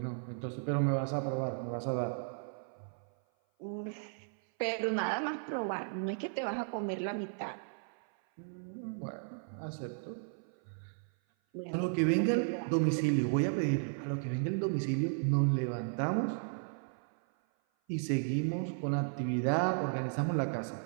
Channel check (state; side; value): silent; left; 55 dB below the other